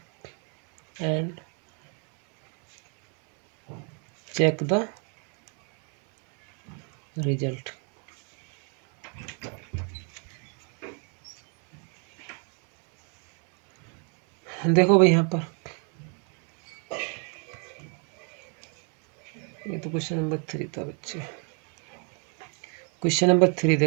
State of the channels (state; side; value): quieter; left; 38.7 dB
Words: and check the result. देखो भाई यहाँ पर ये तो क्वेश्चन नंबर 3 था बच्चे। क्वेश्चन नंबर 3